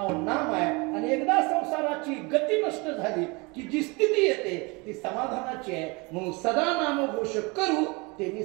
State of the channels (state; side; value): quieter; left; 27.5 dB